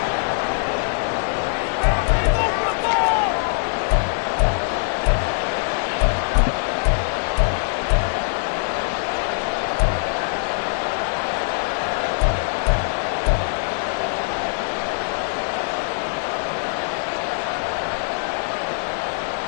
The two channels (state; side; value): silent; right; 61 dB below the other